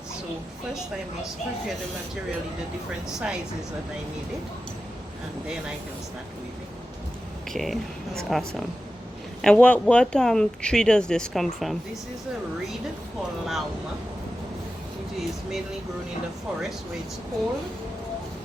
So first I must prepare the material in the different sizes that I need it. And then I can start weaving. Okay, that's awesome. And what tree does this come from? This is a reed called lauma. It is mainly grown in the forest where it's cold.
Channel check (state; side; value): normal; both; correlation 0.93